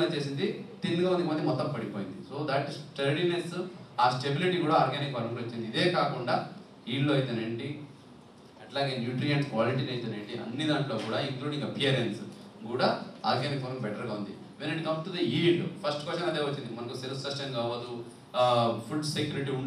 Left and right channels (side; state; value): both; identical; correlation 1.00